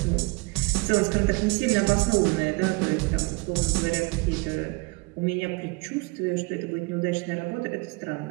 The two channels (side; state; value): left; quieter; 27.2 dB